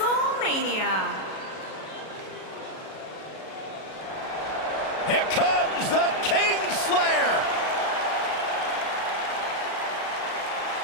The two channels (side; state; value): right; late; 37 ms